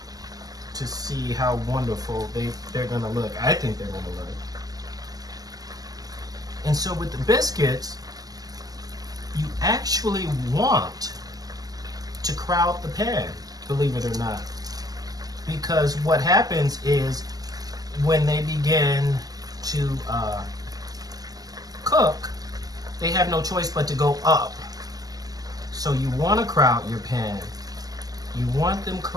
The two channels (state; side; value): late; left; 0.18 ms